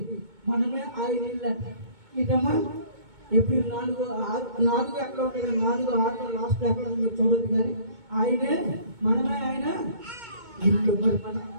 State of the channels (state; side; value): late; left; 2.2 ms